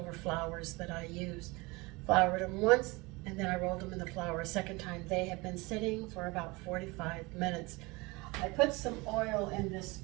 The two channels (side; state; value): left; quieter; 24.5 dB